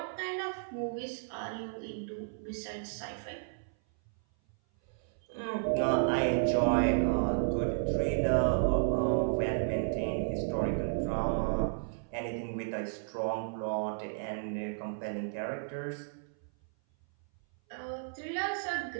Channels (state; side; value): silent; left; 56 dB below the other